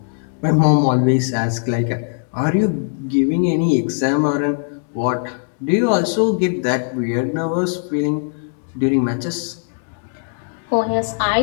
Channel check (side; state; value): right; silent; digital silence